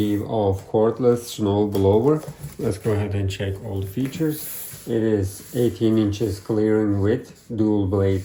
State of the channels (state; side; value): identical; both; correlation 1.00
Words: of Cordless Snow Blower. Let's go ahead and check all the features. It is 18 inches clearing width, dual blade